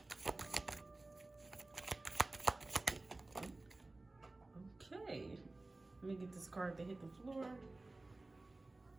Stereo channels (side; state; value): left; quieter; 3.1 dB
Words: Okay, let me get this card to hit the floor.